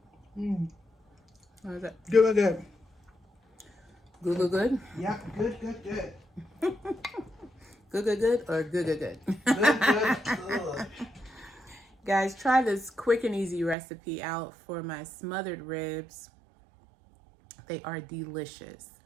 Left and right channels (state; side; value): drops out; left; at 13.8 s